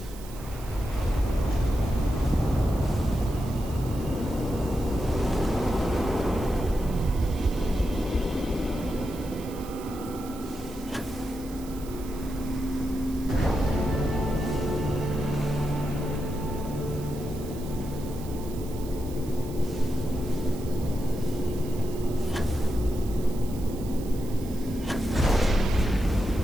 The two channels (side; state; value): right; noise; hiss, 18 dB below the sound